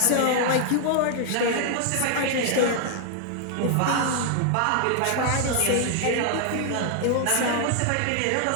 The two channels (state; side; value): different; both; correlation 0.00